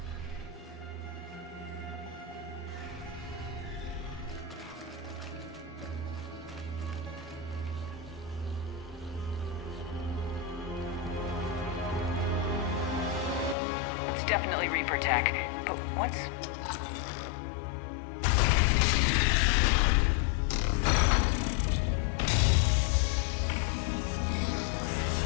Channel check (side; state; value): right; drops out; at 13.6 s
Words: Definitely Reaper tech, but what's...